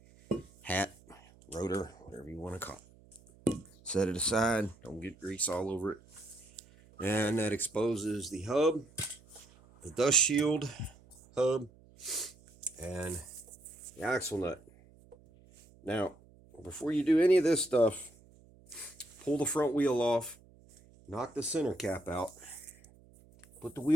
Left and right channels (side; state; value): right; noise; hum, 26 dB below the sound